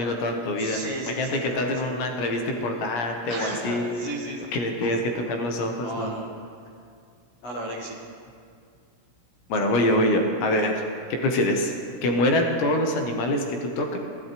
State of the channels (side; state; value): right; late; 17 ms